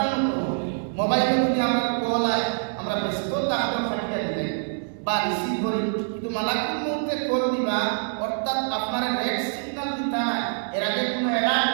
মোবাইলে যদি আমরা কল আয় আমরা ব্যস্ত তাহলে ফাটিয়ে দিই বা রিসিভ করি কিন্তু মালাকুল মউতে কল দিবা অর্থাৎ আপনার রেড সিগন্যাল দিতা না এর আগে কোনো অ্যালার্ট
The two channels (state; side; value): silent; left; 62 dB below the other